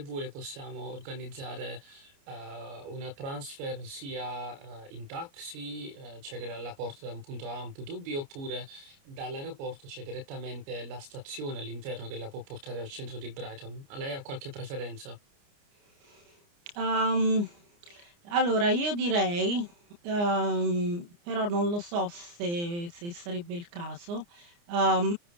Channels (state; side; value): late; left; 29 ms